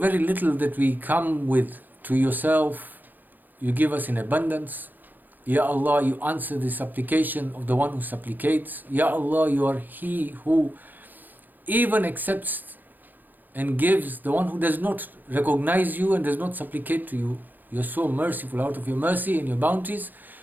little that we come with to yourself, you give us in abundance. Ya Allah, you answer the supplication of the one who supplicates. Ya Allah, you are He who even accepts and gives the one who does not recognize you and does not supplicate to you. You are so merciful. Out of your mercy and your bounties,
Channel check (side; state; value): left; late; 0.087 ms